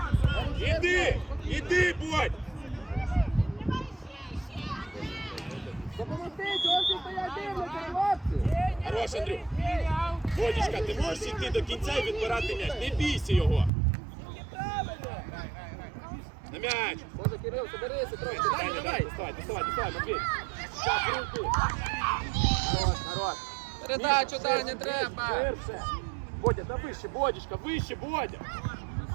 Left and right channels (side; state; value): left; drops out; at 13.7 s